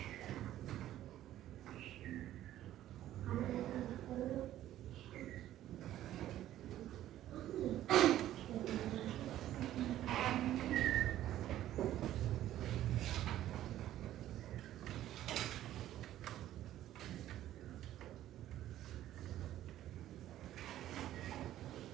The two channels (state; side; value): quieter; left; 13.0 dB